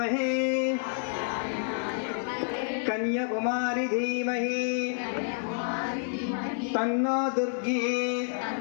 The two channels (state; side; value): silent; right; 59 dB below the other